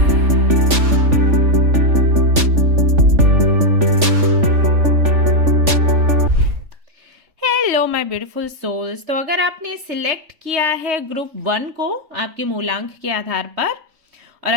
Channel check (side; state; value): left; late; 3.5 ms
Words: Hello my beautiful souls. तो अगर आपने सिलेक्ट किया है ग्रुप 1 को आपके मूलांक के आधार पर, और